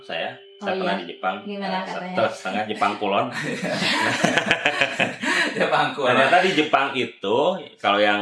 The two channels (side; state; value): both; identical; correlation 1.00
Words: saya Oh, pernah iya? di Jepang. Gimana katanya? Setengah Jepang kulon. Ya bangku. Ternyata di Jepang itu, kalau